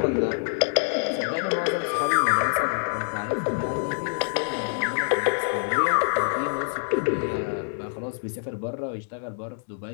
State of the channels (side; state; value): right; silent; digital silence